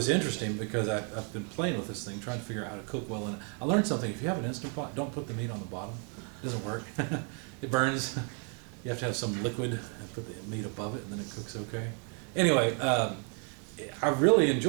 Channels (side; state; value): left; quieter; 35.9 dB